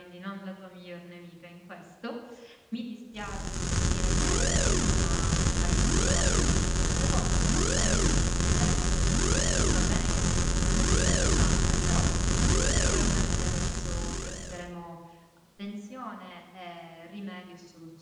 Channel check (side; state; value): both; identical; correlation 1.00